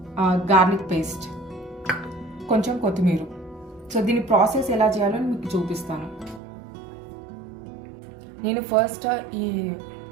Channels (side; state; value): left; drops out; at 6.4 s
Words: గార్లిక్ పేస్ట్, కొంచెం కొత్తిమీర. సో దీని ప్రాసెస్ ఎలా చేయాలో మీకు చూపిస్తాను. నేను ఫస్ట్ ఈ